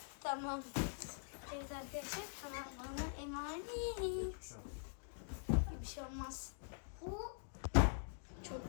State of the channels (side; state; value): right; silent; digital silence